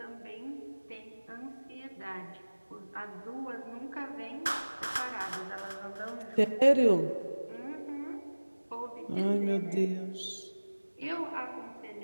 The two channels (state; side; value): inverted; both; correlation -1.00